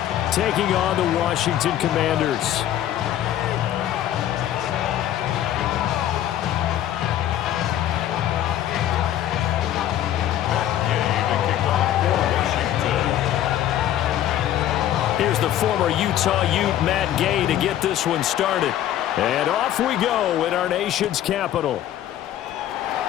taking on the Washington Commanders. Here's the former Utah Ute, Matt Gay, to get this one started. And off we go in our nation's capital.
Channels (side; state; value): right; quieter; 11.9 dB